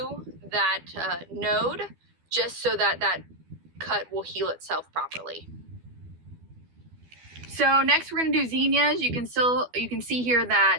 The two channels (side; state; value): left; late; 12 ms